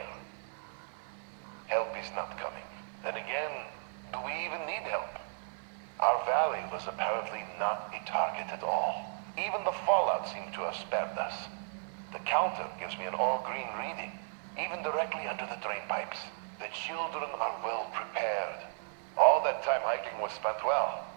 Help is not coming. Then again, do we even need help? Our valley was apparently not a target at all. Even the fallout seemed to have spared us. The counter gives me an all-green reading, even directly under the drain pipes. The children are well prepared. All that time hiking was spent well.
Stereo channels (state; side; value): silent; left; 55 dB below the other